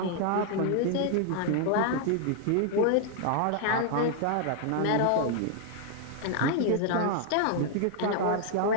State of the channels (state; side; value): different; both; correlation 0.00